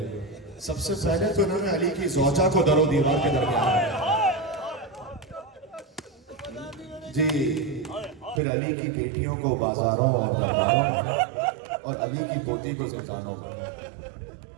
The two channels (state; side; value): drops out; left; at 8.4 s